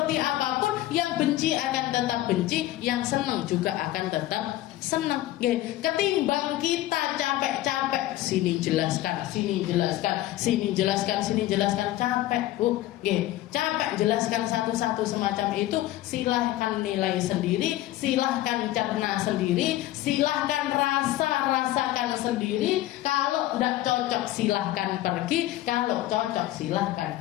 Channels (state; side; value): quieter; right; 15.2 dB